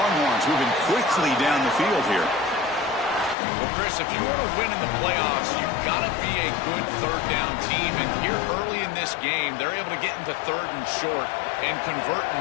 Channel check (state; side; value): drops out; right; at 3.4 s